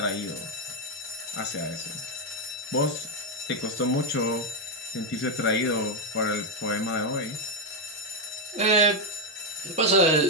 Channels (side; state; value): both; normal; correlation 0.03